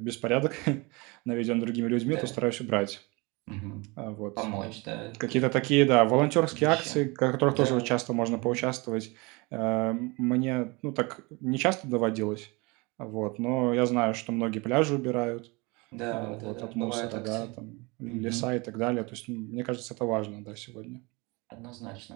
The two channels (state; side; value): quieter; left; 26.5 dB